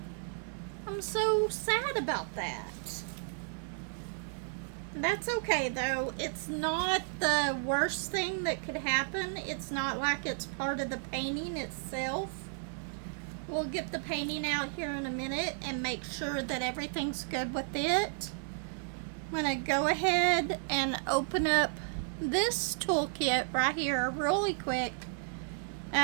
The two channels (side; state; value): left; silent; digital silence